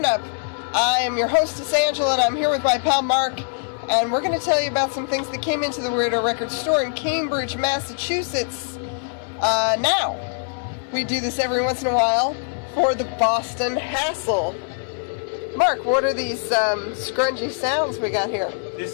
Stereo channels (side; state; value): right; silent; digital silence